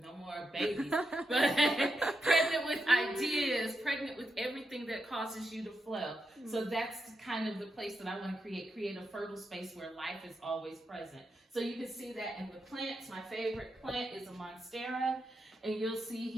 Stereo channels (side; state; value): both; normal; correlation 0.85